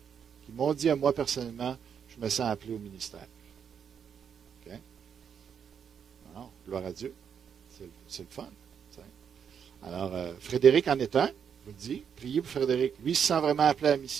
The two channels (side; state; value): left; quieter; 7.5 dB